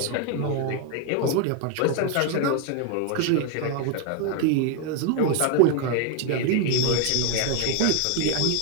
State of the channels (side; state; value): both; different; correlation 0.01